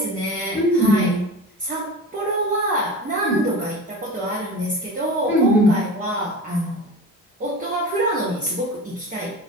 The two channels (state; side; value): normal; both; correlation 0.32